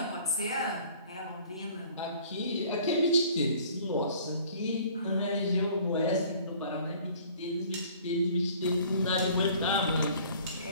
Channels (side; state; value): both; inverted; correlation -0.52